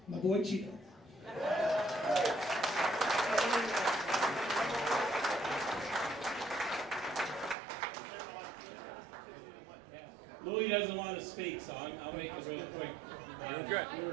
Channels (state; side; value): drops out; left; at 7.6 s